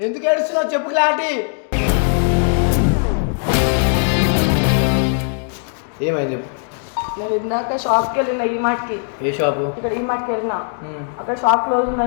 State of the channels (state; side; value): silent; right; 63 dB below the other